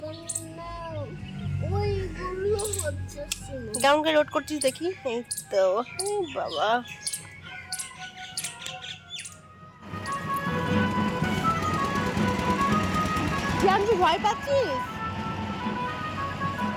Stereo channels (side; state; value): both; identical; correlation 1.00